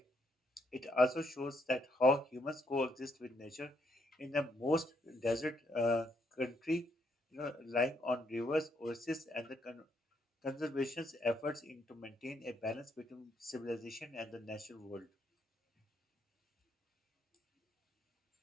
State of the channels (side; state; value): both; normal; correlation 0.73